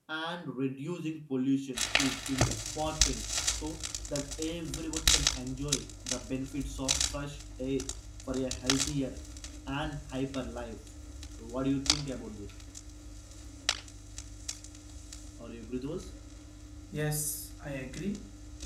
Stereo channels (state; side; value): identical; both; correlation 1.00